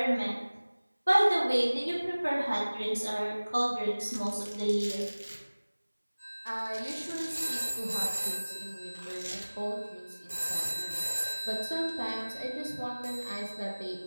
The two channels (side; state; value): both; inverted; correlation -1.00